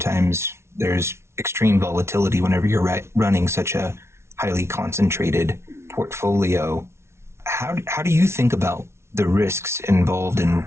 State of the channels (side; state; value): left; late; 0.13 ms